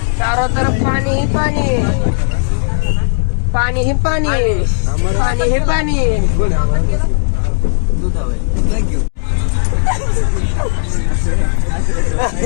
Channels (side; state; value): right; silent; 64 dB below the other